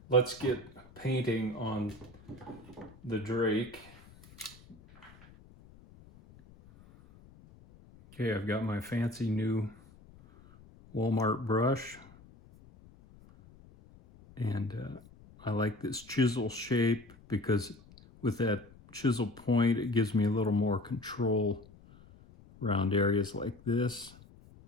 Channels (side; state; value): left; noise; rumble, 23 dB below the sound